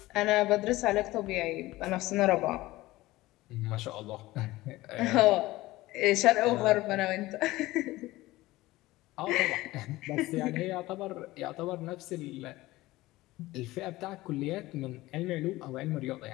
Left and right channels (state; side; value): quieter; right; 18.3 dB